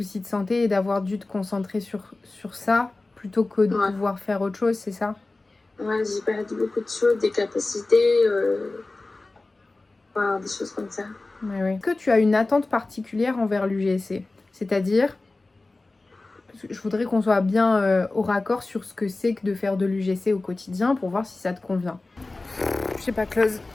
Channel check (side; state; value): right; quieter; 3.2 dB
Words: de santé et d'avoir dû te concentrer sur ça plutôt que de pouvoir faire autre chose, c'est ça? Ouais, j'ai perdu beaucoup de choses, des capacités, des choses comme ça. Ouais. Est-ce que tu as une attente particulière envers l'UGC? C'est-à-dire, je voudrais qu'on soit bien au raccord sur ce que c'est que de faire de l'UGC au quotidien pour voir si ça te convient. Je sais pas, Close.